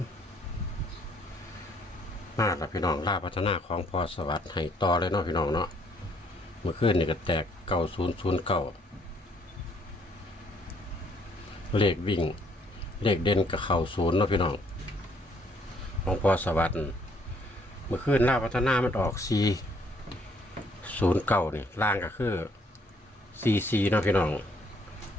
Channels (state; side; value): normal; both; correlation 0.66